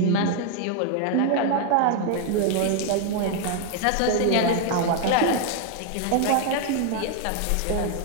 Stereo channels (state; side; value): different; both; correlation 0.00